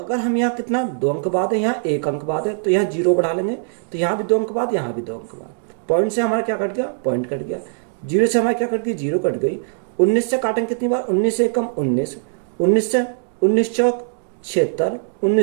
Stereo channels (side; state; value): left; silent; digital silence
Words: हम यहाँ कितना 2 अंक बाद है, यहाँ 1 अंक बाद है, तो यहाँ 0 बढ़ा लेंगे। तो यहाँ भी 2 अंक बाद, यहाँ भी 2 अंक बाद। पॉइंट से हमारा क्या कट गया? पॉइंट कट गया। 0 से हमारी क्या कट गई? 0 कट गई। 19 से काटेंगे कितनी बार? 19 से कम 19, 19 से 19 चौक 76,